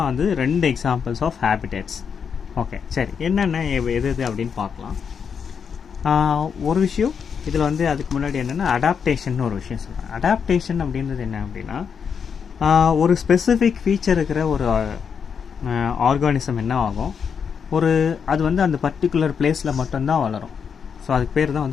2 examples of habitats. Okay, சரி, என்னென்ன எது அப்படின்னு பார்க்கலாம். ஒரு விஷயம் இதில் அதுக்கு முன்னாடி என்னென்னா அடாப்டேஷன் ஒரு விஷயம் சொல்கிறேன். அடாப்டேஷன் அப்படின்றது என்ன அப்படின்னா ஒரு ஸ்பெசிஃபிக் ஃபீச்சர் இருக்கிற ஒரு ஆர்கானிசம் என்ன ஆகும், அது அந்த பர்டிகுலர் பிளேஸில் மட்டும்தான் வளரும். ஸோ அதுக்கு பேர்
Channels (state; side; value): quieter; right; 6.7 dB